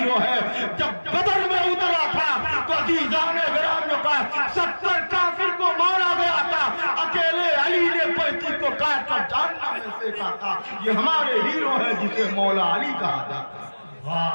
ہے۔ جب بدر میں اترا تھا تو عزیزان گرامی کا 70 کافر کو مارا گیا تھا، اکیلے علی نے 35 کو کاٹ کر جہنم میں پھینکا تھا۔ یہ ہمارے ہیرو ہیں جسے مولا علی کہا جاتا ہے۔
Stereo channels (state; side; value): inverted; both; correlation -1.00